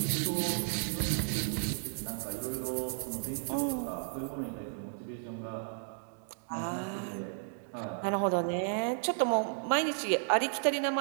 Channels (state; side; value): silent; left; digital silence